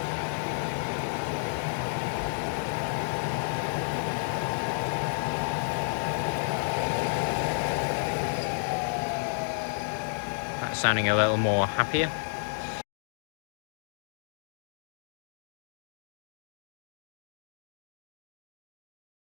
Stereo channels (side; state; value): right; silent; digital silence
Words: That's sounding a little more happier.